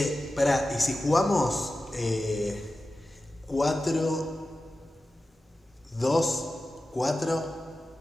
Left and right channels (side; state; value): both; normal; correlation 0.94